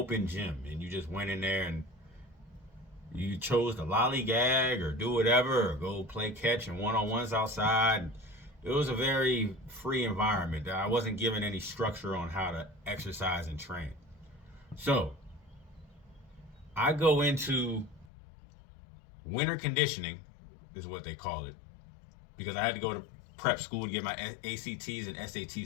gym, and you just went in there and you chose to lollygag or do whatever or go play catch and one-on-ones outside. It was a very free environment. I wasn't given any structure on how to exercise and train. So I go into winter conditioning, is what they call it, because I had to go to prep school to get my ACTs and SAT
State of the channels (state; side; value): drops out; right; at 18.1 s